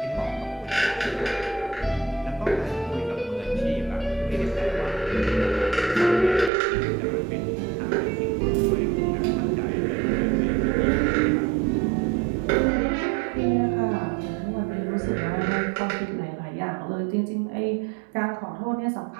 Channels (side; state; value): left; drops out; at 6.5 s